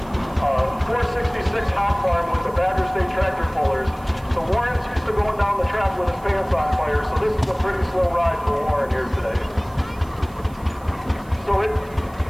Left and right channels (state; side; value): noise; right; hiss, 26 dB below the sound